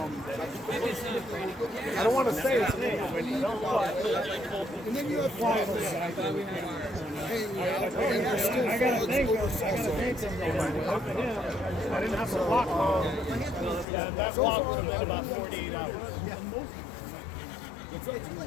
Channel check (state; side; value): drops out; right; at 13.9 s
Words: I don't want to say his name. and then you have frogs hanging out, and there's still frogs over I didn't have to walk long. Yeah, that walk was about 48 hours. I'm